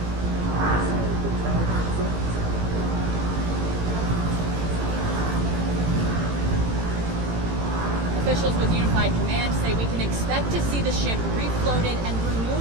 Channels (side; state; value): left; late; 18 ms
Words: Officials with Unified Command say we can expect to see the ship refloated and